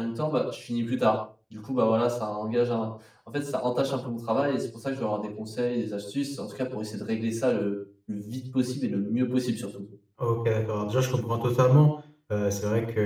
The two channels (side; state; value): both; identical; correlation 1.00